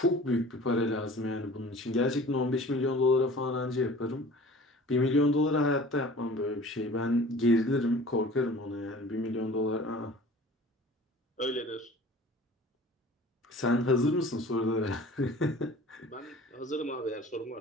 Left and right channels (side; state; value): both; normal; correlation 0.44